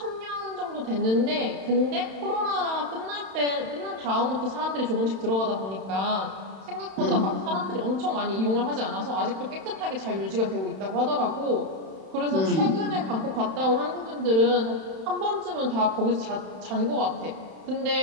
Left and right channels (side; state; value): left; late; 31 ms